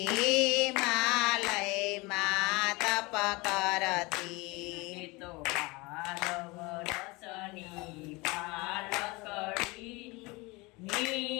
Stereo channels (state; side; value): quieter; right; 24.6 dB